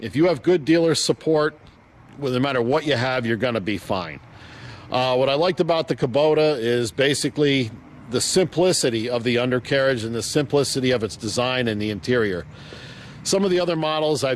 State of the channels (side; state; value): both; identical; correlation 1.00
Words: you have good dealer support, well, no matter what you have, you're going to be fine. What I liked about the Kubota is basically the simplicity of the undercarriage and the simplicity of its design and the interior. Some of the other models